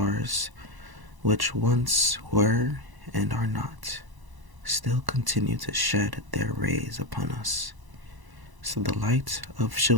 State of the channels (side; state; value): left; late; 1.0 ms